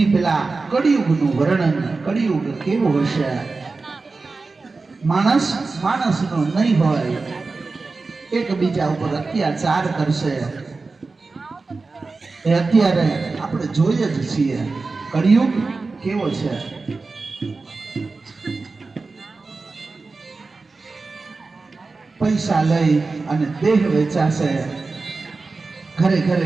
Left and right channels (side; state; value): left; quieter; 3.9 dB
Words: પેલા કળિયુગનું વર્ણન, કળિયુગ કેવો હશે, માણસ માણસનો નહીં હોય, એકબીજા ઉપર અત્યાચાર કરશે. એ અત્યારે આપણે જોઈએ જ છીએ કળિયુગ કેવો છે. પૈસા લઈ અને દેહ વેચાશે, ઘરે